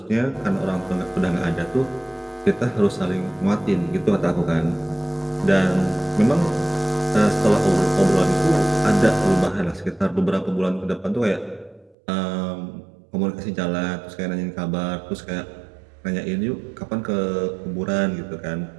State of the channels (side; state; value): left; drops out; at 12.0 s